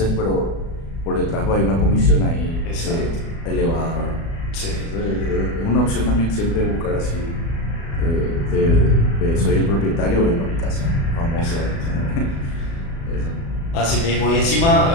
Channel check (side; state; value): right; late; 36 ms